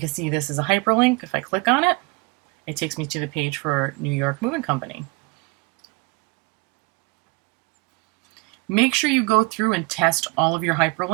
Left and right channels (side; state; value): left; quieter; 26.8 dB